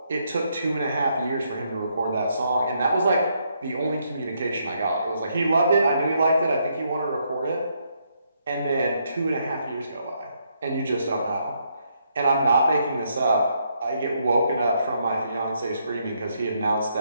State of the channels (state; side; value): inverted; both; correlation -0.75